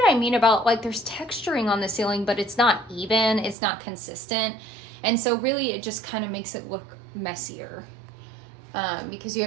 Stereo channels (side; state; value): left; drops out; at 3.6 s